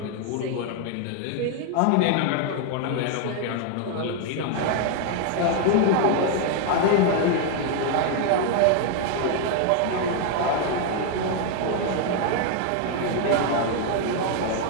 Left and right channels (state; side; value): different; both; correlation 0.00